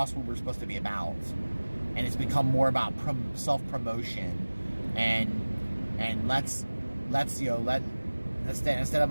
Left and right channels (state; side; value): inverted; both; correlation -1.00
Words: what we're supposed to be about, and it's become more about self-promotion, and let's instead of